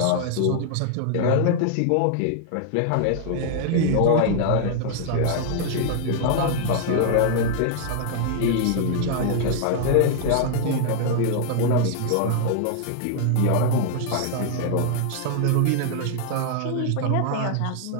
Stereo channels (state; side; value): different; both; correlation -0.01